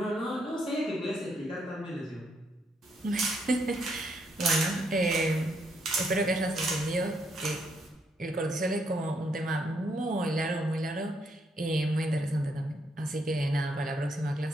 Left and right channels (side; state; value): both; normal; correlation 0.74